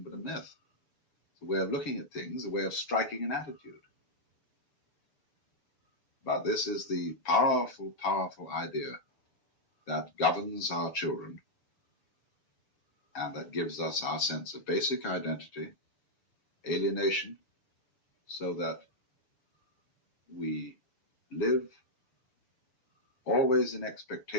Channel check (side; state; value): right; late; 6.8 ms